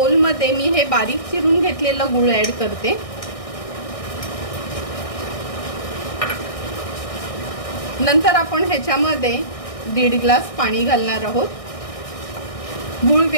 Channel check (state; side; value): late; right; 1.6 ms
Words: मी हे बारीक चिरून घेतलेलं गूळ ऍड करते। नंतर आपण ह्याच्यामध्ये 1.5 ग्लास पाणी घालणार आहोत। गूळ